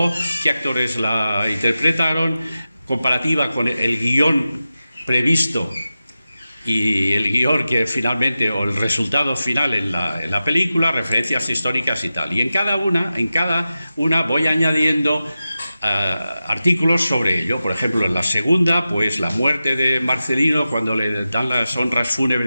qué actores la interpretaron, comparativa con el guión previsto y el guión que finalmente, o el resultado final en la película, referencias históricas y tal. Y en cada una voy añadiendo artículos sobre ello. Por ejemplo, en la segunda, pues la muerte de Marcelino, cuando le dan las honras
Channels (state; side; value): inverted; both; correlation -0.93